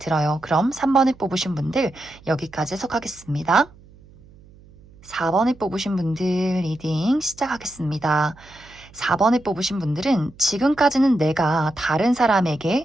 그럼 3번을 뽑으신 분들 여기까지 해석하겠습니다. 4번을 뽑으신 분들 리딩 시작하겠습니다. 4번을 뽑으신 분들은 지금까지는 내가 다른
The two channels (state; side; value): noise; right; hum, 24 dB below the sound